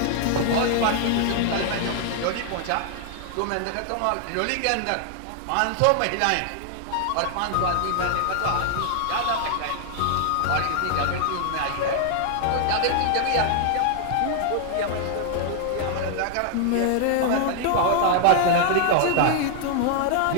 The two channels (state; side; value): different; both; correlation 0.00